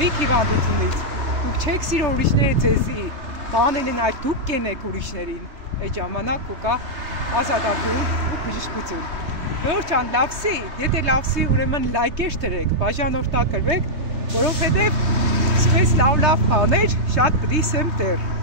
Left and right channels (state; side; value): late; left; 3.2 ms